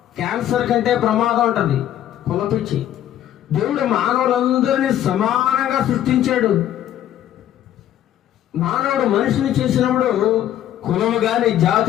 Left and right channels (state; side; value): quieter; right; 11.7 dB